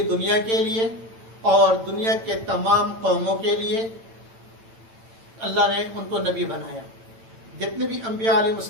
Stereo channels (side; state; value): left; late; 8.9 ms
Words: دنیا کے لیے اور دنیا کے تمام قوموں کے لیے اللہ نے ان کو نبی بنایا. جتنے بھی انبیاء علیہ